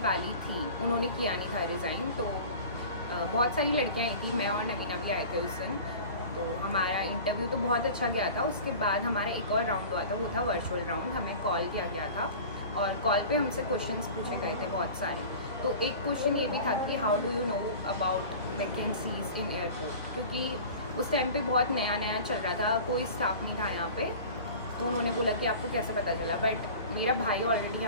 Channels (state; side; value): inverted; both; correlation -0.39